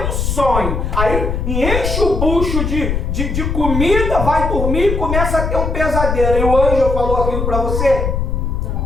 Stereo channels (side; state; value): left; noise; rumble, 1 dB below the sound